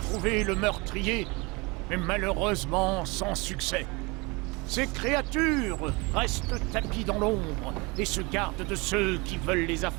le meurtrier, mais malheureusement sans succès. Ces créatures restent tapies dans l'ombre et se gardent de ceux qui veulent les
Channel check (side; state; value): left; quieter; 26.6 dB